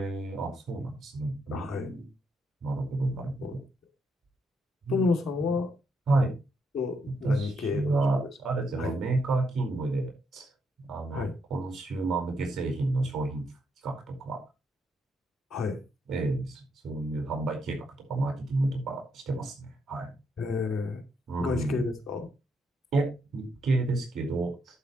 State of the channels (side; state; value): both; normal; correlation 0.77